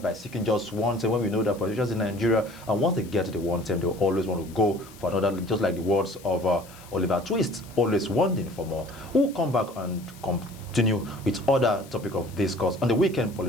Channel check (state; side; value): noise; left; hiss, 22 dB below the sound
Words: by seeking just one term, when we know that politicians in Nigeria, and once they get to the one term, they will always want to go for another, just like the words of Oliver Twist, always wanting for more. We'll come back and continue with other topic of discourse on the weekend